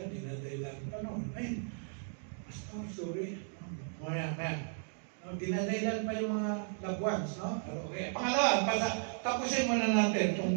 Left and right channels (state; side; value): silent; left; 54 dB below the other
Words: dinadailan pa noon. Ay, pastor, sorry. Dinadailan pa yung mga loved ones, no? Okay. Pangalawa, tapusin muna natin itong